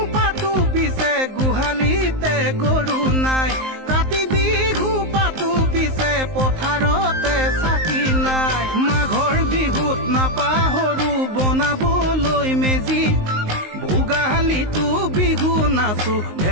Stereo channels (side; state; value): left; late; 19 ms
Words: পাতো পিছে গোহালিতে গৰু নাই কাতি বিহু পাতো পিছে পথাৰতে চাকি নাই মাঘৰ বিহুত নাপাহৰো বনাবলৈ মেজি ভোগালীটো বিহু নাচো